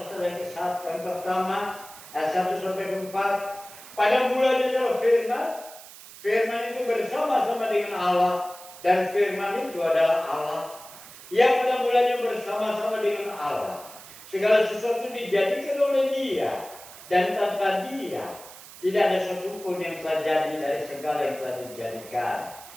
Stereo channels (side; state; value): right; noise; hiss, 17 dB below the sound